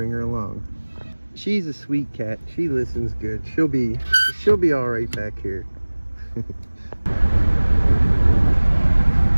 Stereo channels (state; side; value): inverted; both; correlation -1.00